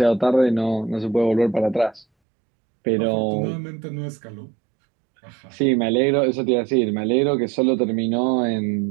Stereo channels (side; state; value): left; drops out; at 2.1 s